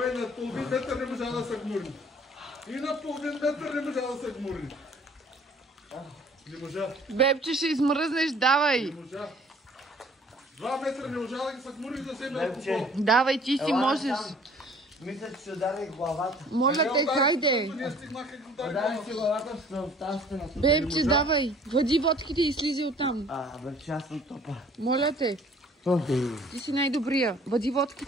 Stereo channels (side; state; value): both; normal; correlation 0.54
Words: на половин метър не можа да се гмурни. И на половин метър не можа да се гмурни. Не можа. Бебче, ще измръзнеш, давай. Не можа. 2 метра не можа да ги се гмурни да вземе Бебче. алкохол. Давай, ти си можеш. Мисля, че ще удари главата. Моля те, хайде. Ние стигнаха и го удари Удари главата. си главата в тази стена. Бебче, давай. Води водките и слизи оттам. Бебче, аз съм топа. Моля те, ти си най-добрия. Води